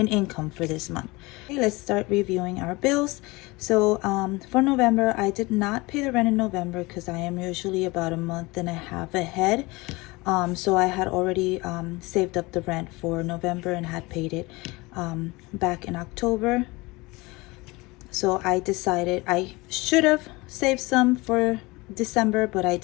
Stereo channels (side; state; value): right; quieter; 23.3 dB